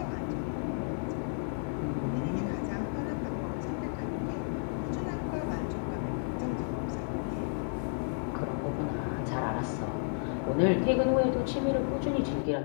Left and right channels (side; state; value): right; silent; digital silence